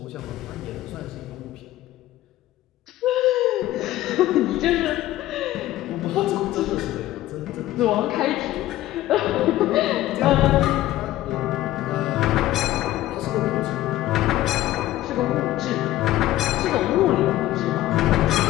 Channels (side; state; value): right; quieter; 15.0 dB